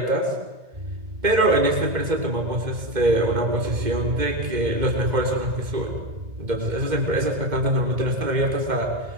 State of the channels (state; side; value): late; left; 2.1 ms